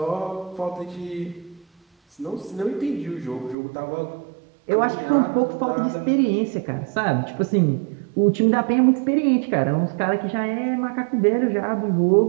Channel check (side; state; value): left; drops out; at 3.6 s